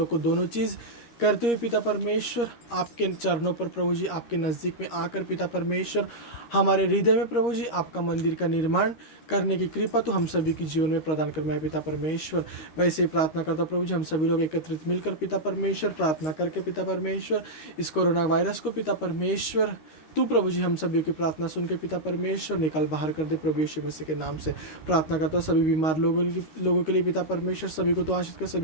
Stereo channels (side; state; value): right; late; 13 ms